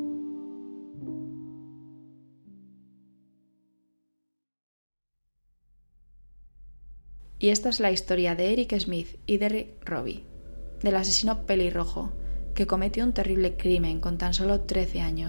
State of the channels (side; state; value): both; inverted; correlation -1.00